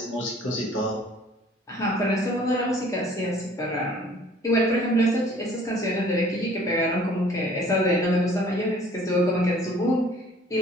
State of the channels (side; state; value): both; normal; correlation 0.54